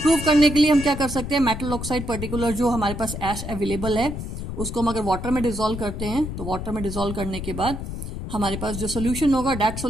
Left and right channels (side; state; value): left; noise; rumble, 6 dB below the sound